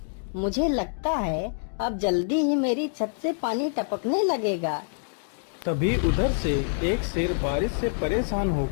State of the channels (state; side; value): silent; right; digital silence